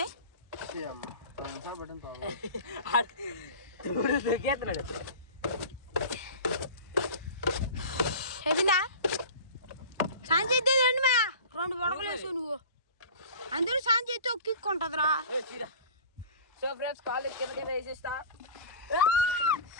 చెప్పిందా సాయం చేద్దే రండి మా 2 బొడకలు వేసావు నువ్వు. అందరూ సాయం చేస్తే ఒక్కిక్కుంటుందిరా. సో ఫ్రెండ్స్ కాలేజ్ కిందకైనా వేసేస్తా.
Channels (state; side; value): inverted; both; correlation -0.36